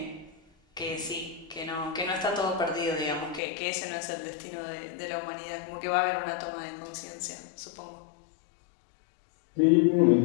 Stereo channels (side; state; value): right; drops out; at 3.4 s